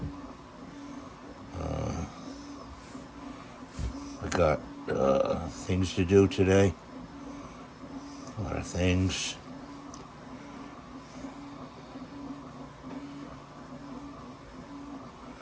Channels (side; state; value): both; identical; correlation 1.00